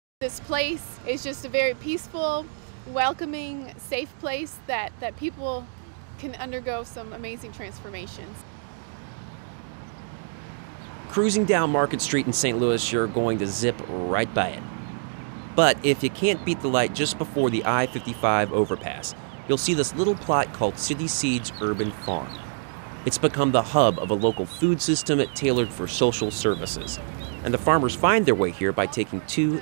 This place is just a very peaceful, welcoming, safe place that people can undergo some amazing transformations. Cruising down Market Street in St. Louis, you're going to zip right by it. But if you can't beat the light just before the I-55 overpass, you'll see this little plot called City Seeds Urban Farm. It's become the hub of a local food system tailored for social services. And the farmers find their way here by taking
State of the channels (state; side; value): silent; left; digital silence